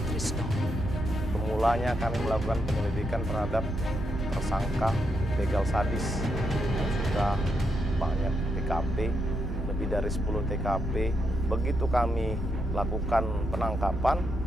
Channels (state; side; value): normal; both; correlation 0.80